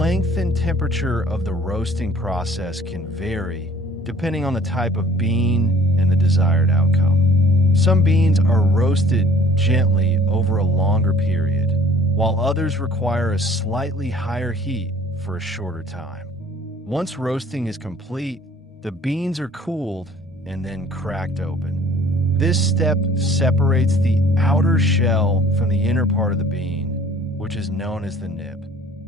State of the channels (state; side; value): normal; both; correlation 0.52